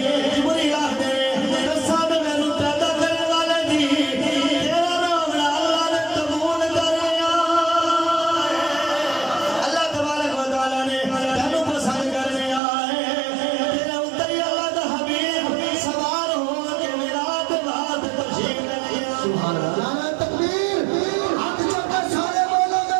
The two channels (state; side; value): drops out; left; at 12.6 s